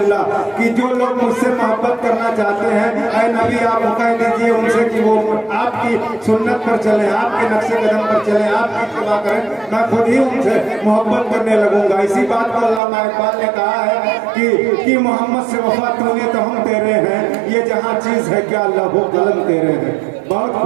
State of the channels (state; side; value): drops out; left; at 12.8 s